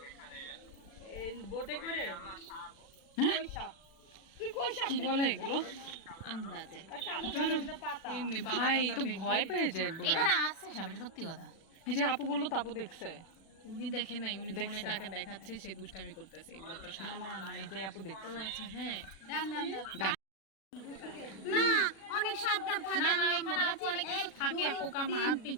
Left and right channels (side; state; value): right; late; 36 ms